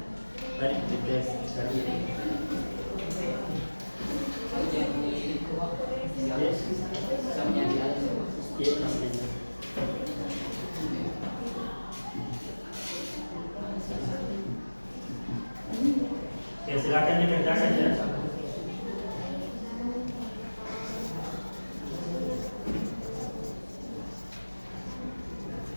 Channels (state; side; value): inverted; both; correlation -1.00